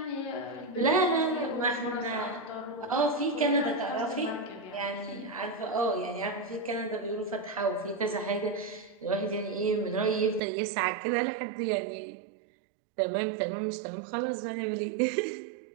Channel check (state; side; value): drops out; left; at 10.4 s